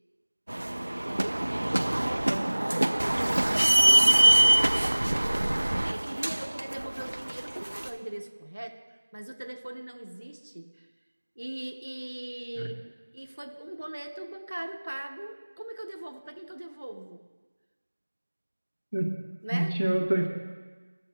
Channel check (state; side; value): inverted; both; correlation -1.00